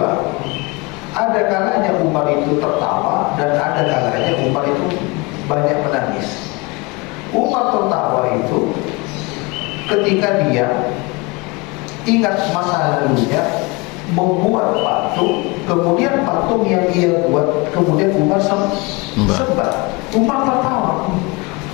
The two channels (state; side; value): quieter; right; 26.4 dB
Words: ada kalanya Umar itu tertawa dan ada kalanya Umar itu banyak menangis. Umar tertawa itu ketika dia ingat masa lalunya, membuat patung, kemudian patung yang ia buat kemudian Umar sembah. Umar tertawa.